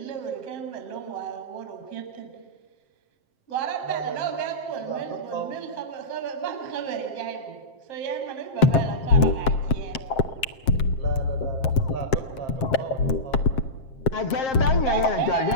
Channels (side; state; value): right; late; 7.6 ms